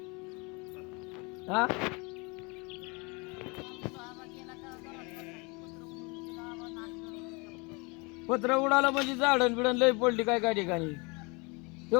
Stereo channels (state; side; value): quieter; right; 29.3 dB